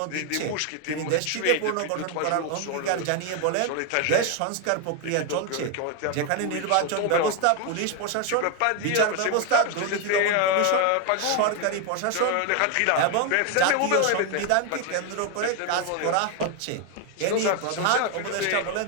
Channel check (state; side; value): different; both; correlation 0.01